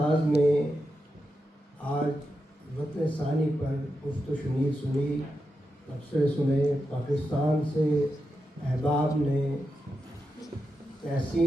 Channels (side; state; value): both; normal; correlation 0.88